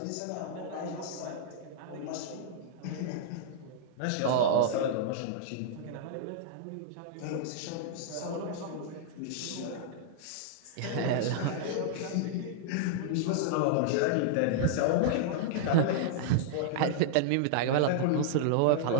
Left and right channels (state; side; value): different; both; correlation -0.01